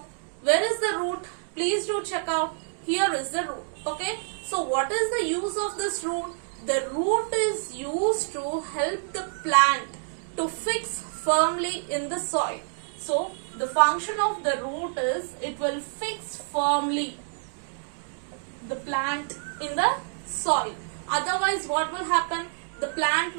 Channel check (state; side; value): silent; left; digital silence